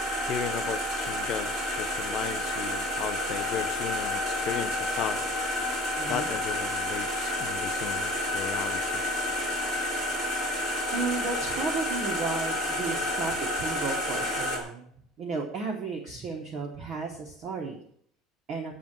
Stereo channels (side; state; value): both; normal; correlation 0.43